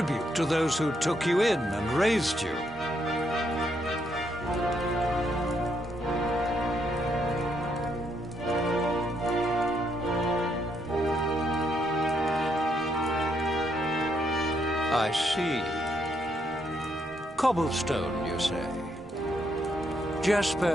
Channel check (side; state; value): both; normal; correlation 0.75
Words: to those who took you in and raised you. I see. Cobblestone, you say?